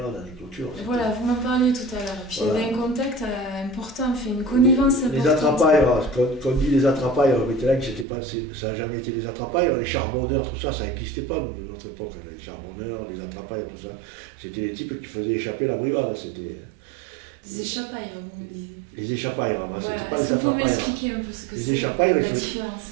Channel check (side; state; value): left; drops out; at 8.1 s